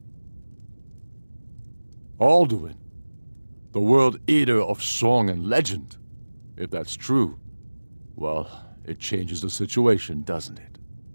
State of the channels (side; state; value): both; inverted; correlation -1.00